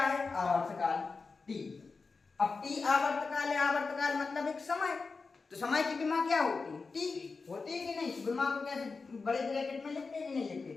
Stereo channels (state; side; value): quieter; right; 4.4 dB